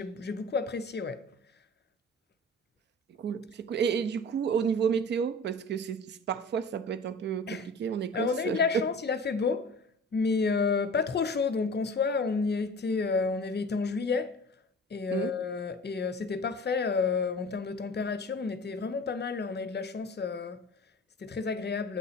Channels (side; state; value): both; normal; correlation 0.40